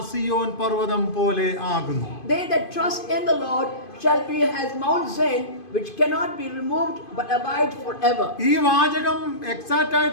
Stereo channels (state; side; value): late; right; 2.5 ms